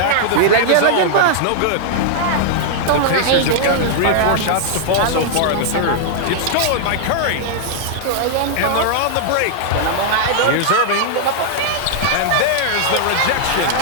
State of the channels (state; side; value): different; both; correlation -0.01